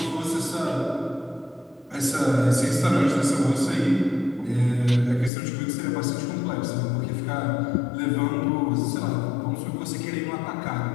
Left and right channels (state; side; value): drops out; right; at 5.3 s